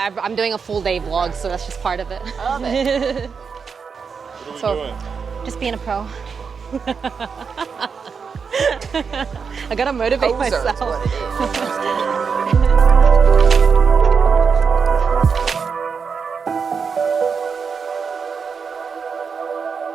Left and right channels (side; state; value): left; quieter; 5.8 dB